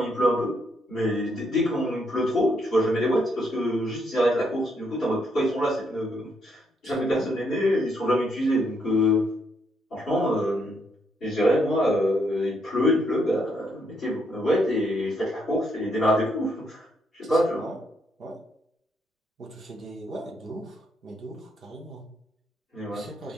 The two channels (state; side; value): normal; both; correlation 0.75